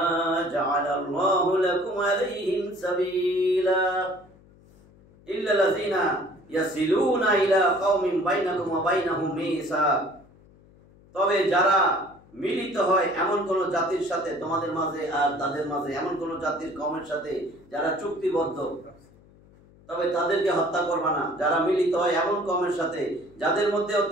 جعل الله لكم عليهم سبيلا إلا الذين يصلون إلى قوم بينكم وبينهم ميثاق, তবে যারা মিলিত হয় এমন কোন জাতির সাথে তোমাদের মাঝে আর তাদের মাঝে, এমন কোন জাতির কওমের সাথে যারা চুক্তিবদ্ধ, তবে তাদেরকে হত্যা করবা না। যারা মিলিত হয় এমন কওমের সাথে যাদের মধ্যেও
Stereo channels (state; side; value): noise; left; hum, 27 dB below the sound